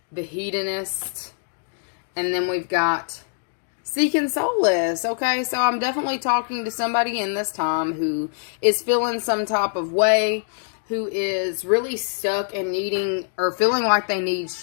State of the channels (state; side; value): silent; right; digital silence